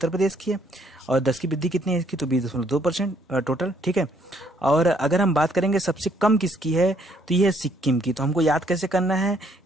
प्रदेश की है, और 10 की वृद्धि कितनी है इसकी, तो 20.2% टोटल, ठीक है। और अगर हम बात करेंगे सबसे कम किसकी है, तो ये है सिक्किम की। तो हमको याद कैसे करना है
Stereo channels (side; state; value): both; normal; correlation 0.67